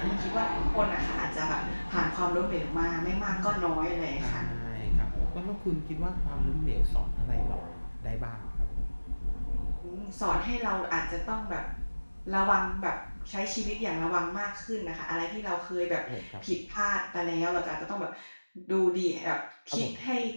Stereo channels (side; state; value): both; inverted; correlation -1.00